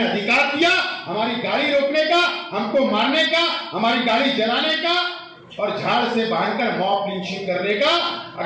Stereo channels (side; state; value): both; identical; correlation 1.00